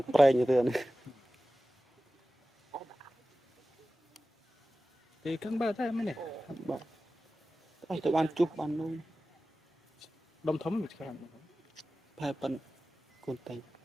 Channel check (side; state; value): both; normal; correlation 0.95